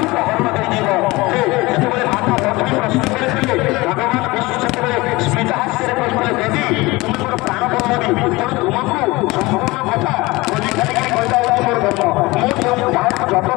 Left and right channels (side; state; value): right; quieter; 21.8 dB